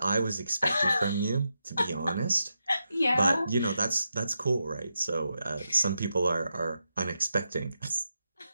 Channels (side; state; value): both; inverted; correlation -0.86